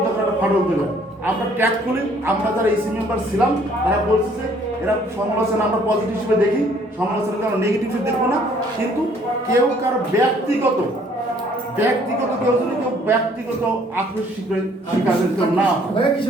তখন একটা ফাটল দেবে। আমরা ট্যাগ খুলি, আমরা যারা এসি মেম্বার ছিলাম তারা বলছে যে এরা সমালোচনা আমরা পজিটিভ হিসেবে দেখি, সমালোচনাকে আমরা নেগেটিভ হিসেবে দেখবো না। কিন্তু কেউ কারো ব্যক্তিগত কেউ যদি কেউ ব্যক্তিগত আক্রোশ শিকার কেউ না,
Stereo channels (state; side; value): normal; both; correlation 0.61